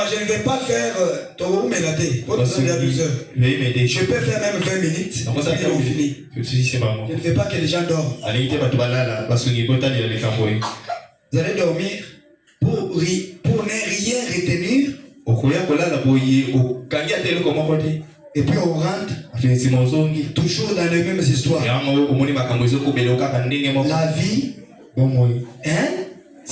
Je ne vais pas faire je peux faire même 20 minutes. Et on finit. Je ne veux pas que les gens dorment. Vous allez dormir pour ne rien retenir. Et puis on rentre toujours dans les mêmes histoires. La vie, hein?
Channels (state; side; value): identical; both; correlation 1.00